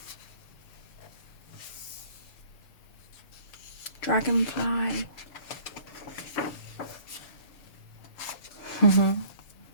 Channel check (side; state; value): right; late; 7.0 ms